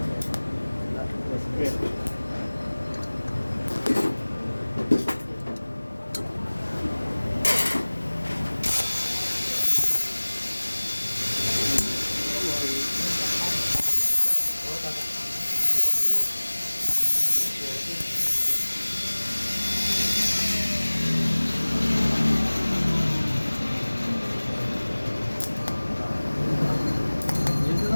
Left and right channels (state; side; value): inverted; both; correlation -1.00